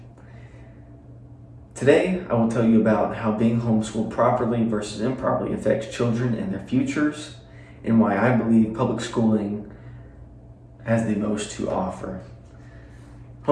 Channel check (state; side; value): identical; both; correlation 1.00